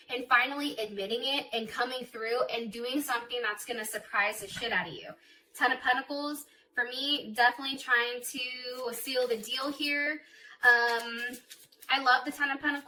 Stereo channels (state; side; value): identical; both; correlation 1.00